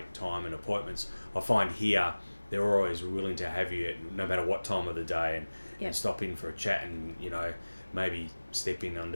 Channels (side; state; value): both; inverted; correlation -1.00